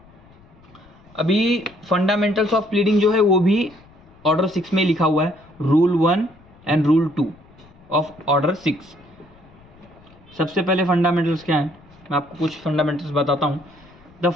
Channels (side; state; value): left; noise; rumble, 26 dB below the sound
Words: अभी फंडामेंटल्स ऑफ प्लीडिंग जो है वो भी ऑर्डर 6 में लिखा हुआ है, rule 1 and rule 2 of order 6। सबसे पहले फंडामेंटल्स क्या है, मैं आपको कुछ फंडामेंटल्स बताता हूँ। The